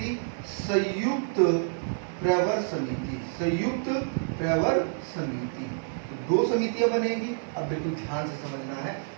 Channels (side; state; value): left; silent; 59 dB below the other